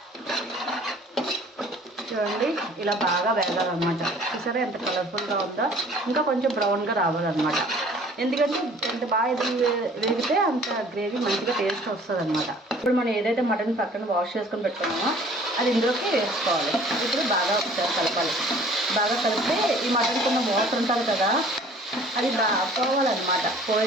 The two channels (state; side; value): normal; both; correlation 0.52